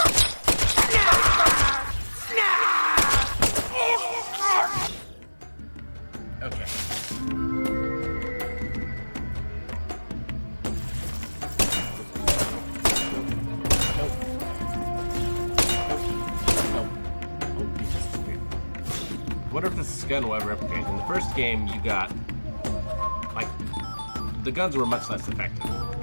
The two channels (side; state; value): both; inverted; correlation -1.00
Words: I wonder if this gun will ever replicate. In the first game, you got, like, the guns were much less effective,